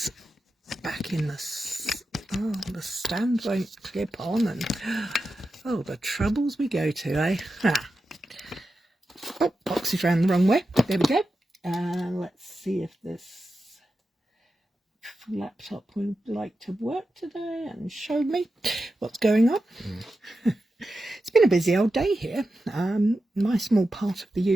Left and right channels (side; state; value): both; normal; correlation 0.91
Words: back in the stand won't clip on, and oh, the troubles we go to, eh? Oh, box is round the wrong way. There we go. Let's see if this laptop would like to work today and show me what's going on. It's been a busy old day here. My small part of